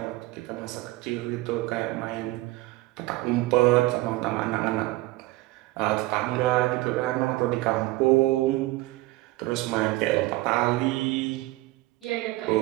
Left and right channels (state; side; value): quieter; left; 19.3 dB